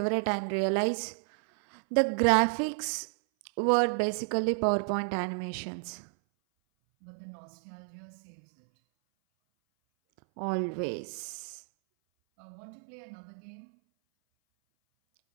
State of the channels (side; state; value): left; silent; 57 dB below the other